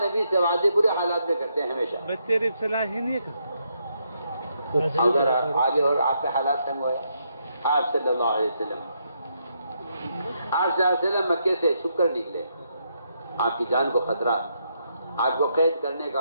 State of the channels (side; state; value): both; inverted; correlation -0.78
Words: نبی سے وعدے برے حالات میں کرتے ہیں ہمیشہ۔ اگر آگے اور آپ کے حالات تنگ ہوئے، آپ صلی اللہ علیہ وسلم مکے سے چھپ کر نکلے، آپ کی جان کو خطرہ، آپ کو قید کرنے کا،